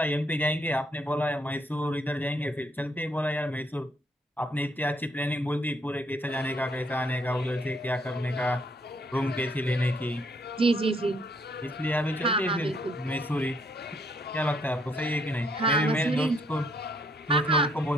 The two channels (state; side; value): normal; both; correlation 0.68